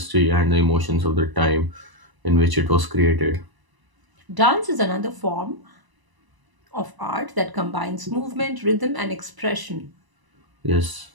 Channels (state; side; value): late; left; 1.0 ms